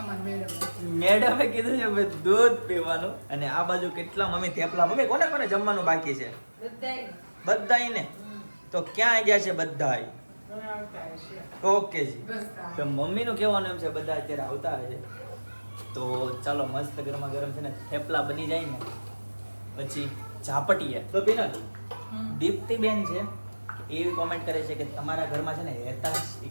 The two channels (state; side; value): inverted; both; correlation -1.00